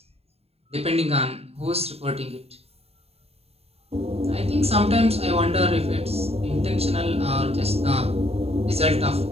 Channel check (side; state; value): left; late; 0.29 ms